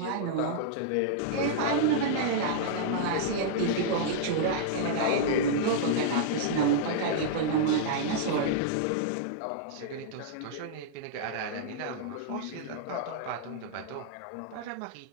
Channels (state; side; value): different; both; correlation -0.02